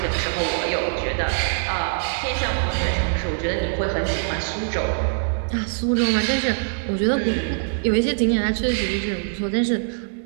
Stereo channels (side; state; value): left; silent; digital silence